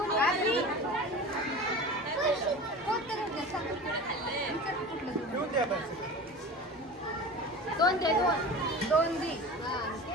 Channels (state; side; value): normal; both; correlation 0.34